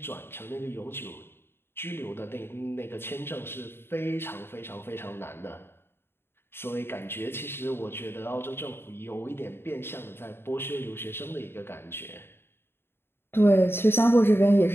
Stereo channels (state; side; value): late; right; 0.11 ms